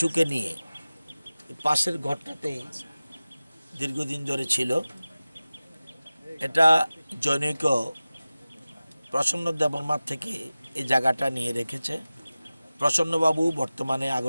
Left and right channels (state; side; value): inverted; both; correlation -0.97